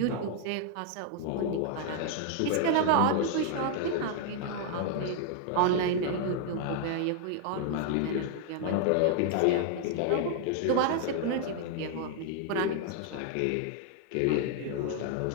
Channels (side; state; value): both; different; correlation 0.00